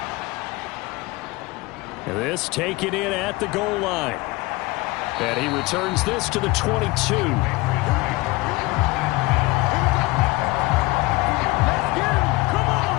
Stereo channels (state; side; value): quieter; right; 22.0 dB